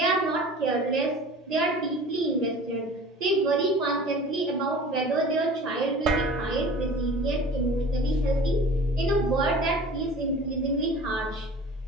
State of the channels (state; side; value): normal; both; correlation 0.42